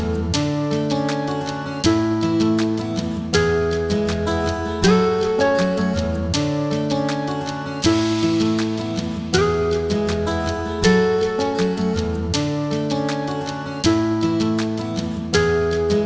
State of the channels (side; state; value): both; identical; correlation 1.00